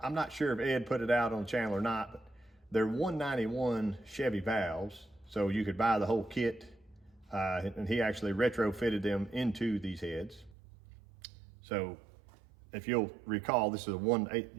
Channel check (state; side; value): drops out; left; at 10.6 s